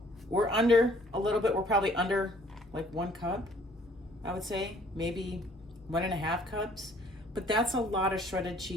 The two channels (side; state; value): both; normal; correlation 0.59